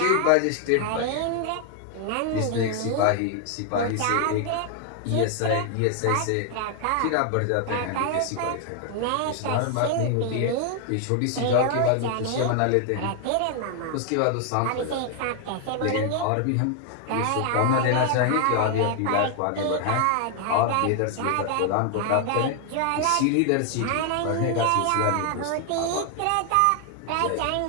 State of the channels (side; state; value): both; different; correlation 0.00